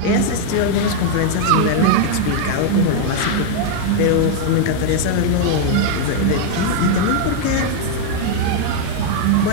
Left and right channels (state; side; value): different; both; correlation 0.00